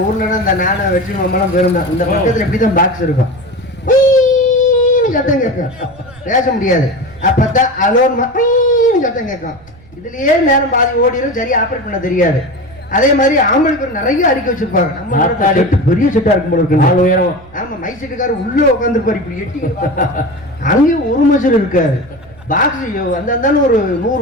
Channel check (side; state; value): right; noise; rumble, 24 dB below the sound